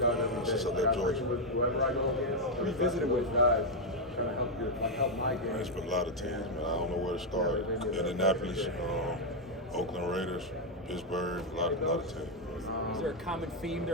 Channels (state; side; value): normal; both; correlation 0.02